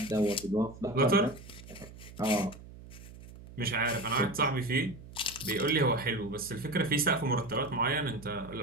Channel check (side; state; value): right; noise; hum, 17 dB below the sound